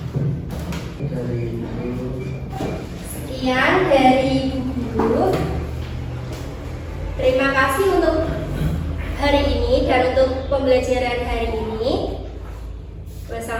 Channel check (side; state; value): both; identical; correlation 1.00